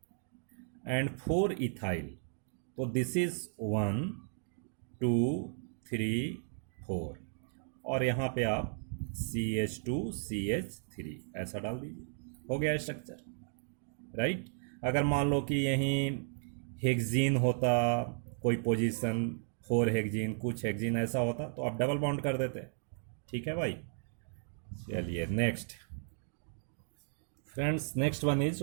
एंड 4 इथाइल, तो दिस इज 1 2 3 4, और यहाँ पे आप CH2CH3 ऐसा डाल दीजिए, हो गया स्ट्रक्चर, राइट। अगर मान लो कि यहीं हेक्जीन होता, कोई पोजीशन 4 हेक्जीन, कुछ हेक्जीन ऐसा होता तो आप डबल बॉन्ड कर देते। ठीक है भाई, चलिए next friends, next one is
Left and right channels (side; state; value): left; silent; digital silence